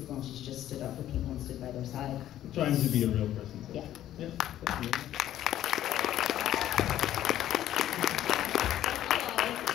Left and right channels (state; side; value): quieter; right; 12.4 dB